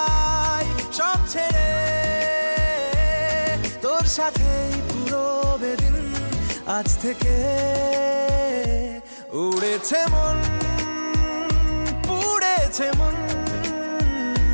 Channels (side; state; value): both; inverted; correlation -1.00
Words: সব ছেড়ে, তোর সাথেই পুরো বেদিন আজ থেকে। উড়েছে মন, পুড়েছে মন,